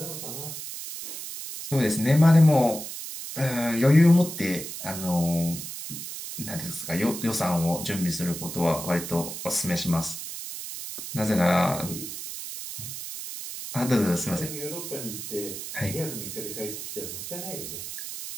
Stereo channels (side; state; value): right; noise; hiss, 8 dB below the sound